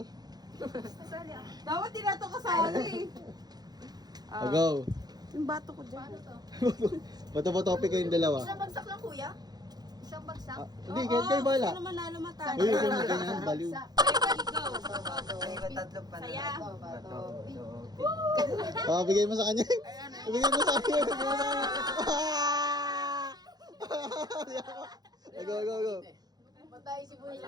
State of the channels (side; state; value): left; late; 0.19 ms